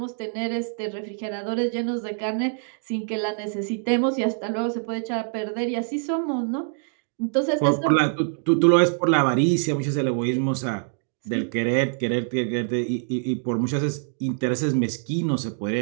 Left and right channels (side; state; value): left; silent; digital silence